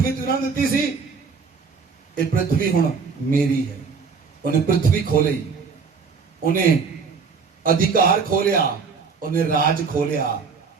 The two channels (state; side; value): quieter; left; 5.3 dB